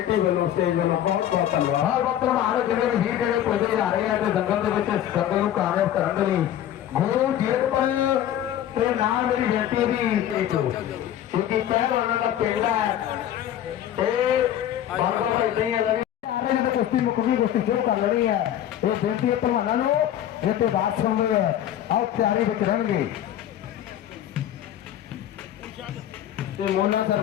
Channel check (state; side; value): quieter; right; 11.3 dB